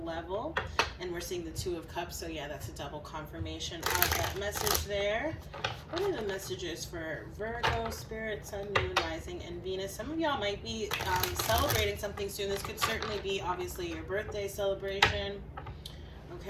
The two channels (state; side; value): identical; both; correlation 1.00